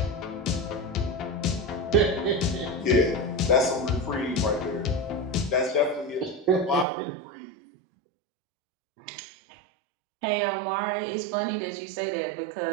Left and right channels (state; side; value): drops out; left; at 6.9 s